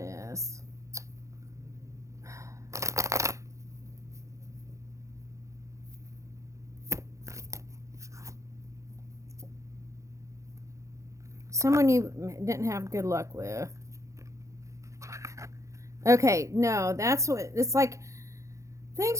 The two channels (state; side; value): late; left; 0.15 ms